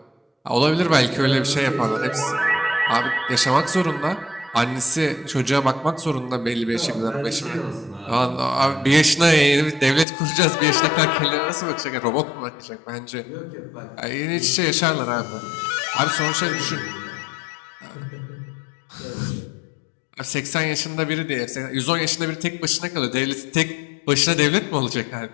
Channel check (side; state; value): right; drops out; at 10.1 s